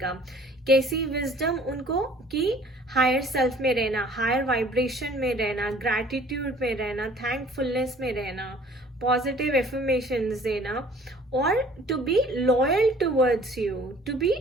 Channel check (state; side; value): normal; both; correlation 0.52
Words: कैसी विजडम? उनको कि हायर सेल्फ में रहना, हायर वाइब्रेशन में रहना, ग्रैटिट्यूड में रहना, थैंकफुलनेस में रहना, पॉजिटिव एफर्मेशंस देना, और to be loyal towards you, to be